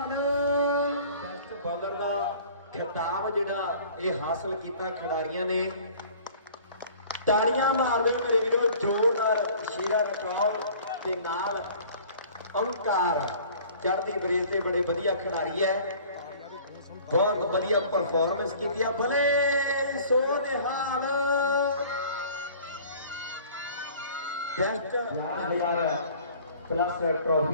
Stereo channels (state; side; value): inverted; both; correlation -0.48